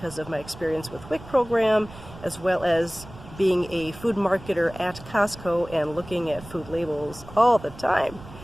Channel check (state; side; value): noise; right; rumble, 17 dB below the sound